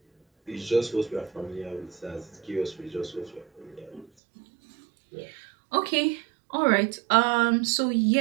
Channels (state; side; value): drops out; left; at 4.0 s